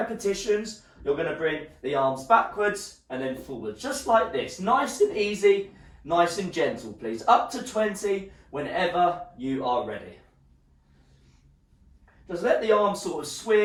You're going to bring the arms backwards and then forward, just like this. Nice and easy, nice and gentle, please. Up to 20 whenever you are ready. Just let the arms sort of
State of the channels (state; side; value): identical; both; correlation 1.00